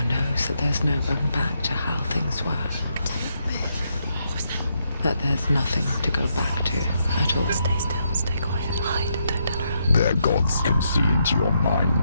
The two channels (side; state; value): both; inverted; correlation -0.79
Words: knows that there's no going back to how things were. That there's nothing to go back to at all. Stay still, stay quiet, hide, don't tell her. Their gods can see into your